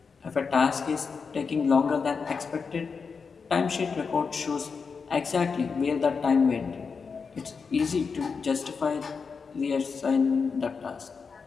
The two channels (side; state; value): right; quieter; 5.3 dB